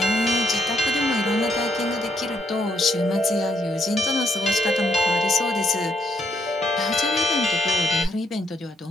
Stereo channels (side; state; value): both; normal; correlation 0.73